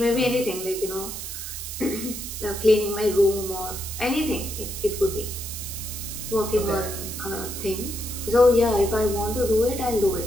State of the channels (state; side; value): noise; right; hiss, 7 dB below the sound